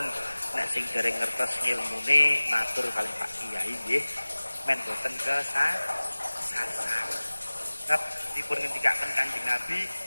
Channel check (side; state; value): both; inverted; correlation -1.00